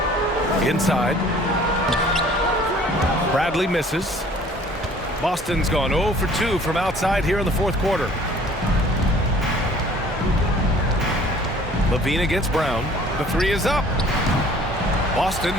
Inside. Bradley misses. Boston's gone 0 for 2 from outside here in the fourth quarter. LaVine against Brown. The 3 is up. Boston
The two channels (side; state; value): both; normal; correlation 0.52